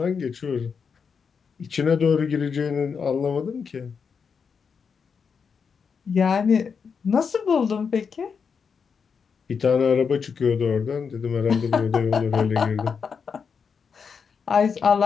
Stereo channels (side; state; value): right; quieter; 6.1 dB